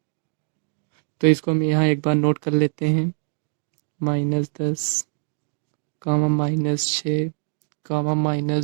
तो इसको हम यहाँ एक बार नोट कर लेते हैं, -10 कामा -6 कामा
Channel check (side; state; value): left; silent; 57 dB below the other